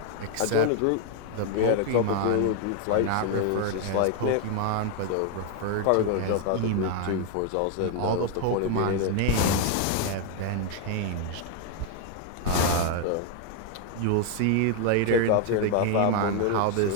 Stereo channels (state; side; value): different; both; correlation 0.00